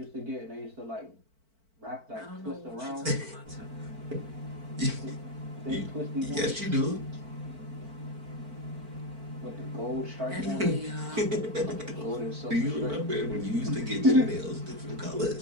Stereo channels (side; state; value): left; late; 4.5 ms